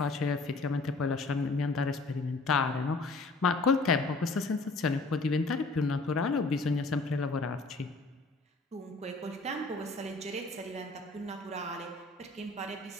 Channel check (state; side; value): quieter; right; 3.4 dB